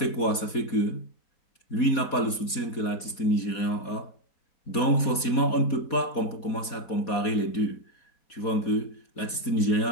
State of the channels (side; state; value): right; late; 4.2 ms